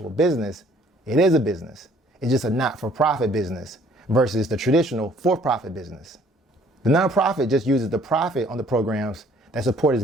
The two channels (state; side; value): normal; both; correlation 0.59